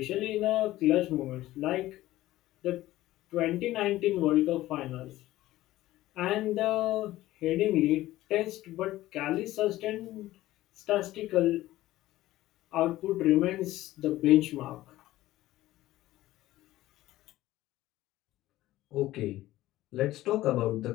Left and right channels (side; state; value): right; quieter; 15.9 dB